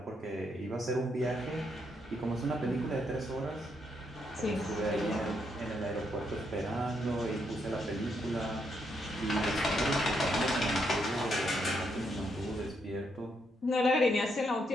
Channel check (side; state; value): both; normal; correlation 0.77